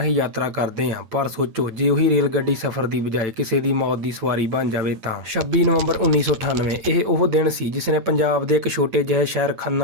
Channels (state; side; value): late; left; 8.9 ms